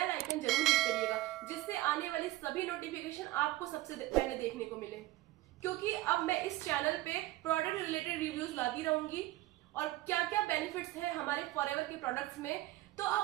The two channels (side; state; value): left; quieter; 17.3 dB